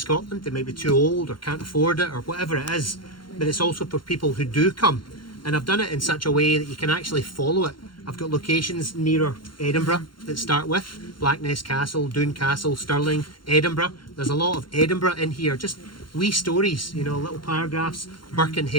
They might be too old or can't afford it or whatever it is. But it's also for people who do come. And I've done it in such a way that you can actually follow it. I've got locations nearer Edinburgh that start with Blackness Castle, Doon Castle, Stirling, Edinburgh. There's a lot of Edinburgh in here. Just wee stories, you know, little paragraphs,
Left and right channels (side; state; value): right; late; 0.72 ms